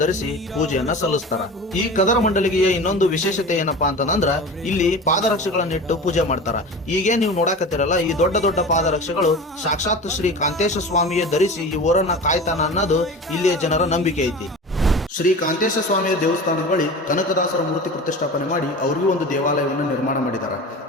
ಧರಿಸಿ ಪೂಜೆಯನ್ನ ಸಲ್ಲಿಸ್ತಾರ. ಈ ಕದರಮಂಡಲಿಗೆಯ ಇನ್ನೊಂದು ವಿಶೇಷತೆ ಏನಪ್ಪಾ ಅಂತಂದ್ರ ಇಲ್ಲಿ ಪಾದರಕ್ಷೆಗಳನ್ನಿಟ್ಟು ಪೂಜೆ ಮಾಡ್ತಾರ. ಈಗೇ ನೀವು ನೋಡಾಕತ್ತಿರಲ್ಲ ಈ ದೊಡ್ಡ ದೊಡ್ಡ ಪಾದರಕ್ಷೆಗಳು ಸಾಕ್ಷಾತ್ ಶ್ರೀ ಕಾಂತೇಶ ಸ್ವಾಮಿಯೇ ಧರಿಸಿ ಈ ಊರನ್ನ ಕಾಯ್ತಾನ ಅನ್ನೋದು ಇಲ್ಲಿಯ ಜನರ ನಂಬಿಕೆ ಐತಿ. ಶ್ರೀ ಕಾಂತೇಶ ಸ್ವಾಮಿಯ ದೇವಸ್ಥಾನದ ಬಳಿ ಕನಕದಾಸರ ಮೂರ್ತಿ ಪ್ರತಿಷ್ಠಾಪನೆ ಮಾಡಿ ಅವರಿಗೂ ಒಂದು ದೇವಾಲಯವನ್ನು ನಿರ್ಮಾಣ ಮಾಡಿದ್ದಾರೆ.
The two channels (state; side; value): normal; both; correlation 0.33